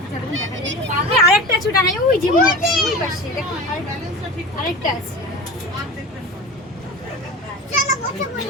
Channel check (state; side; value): normal; both; correlation 0.32